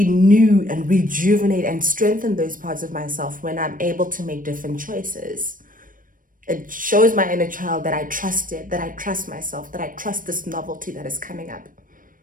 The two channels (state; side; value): late; left; 0.40 ms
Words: and rejuvenate and strengthen those parts of myself when I'm able to make different choices. It shows my inner child that I trust it, that I trust myself, that I trust this novelty that is coming up.